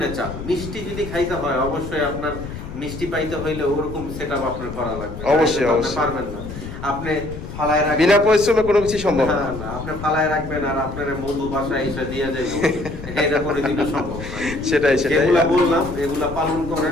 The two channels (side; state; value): left; noise; rumble, 10 dB below the sound